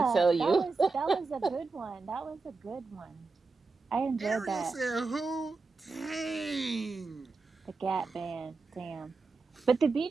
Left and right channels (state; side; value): quieter; left; 4.0 dB